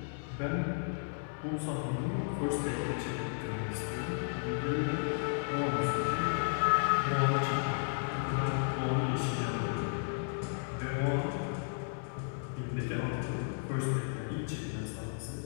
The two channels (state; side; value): silent; right; digital silence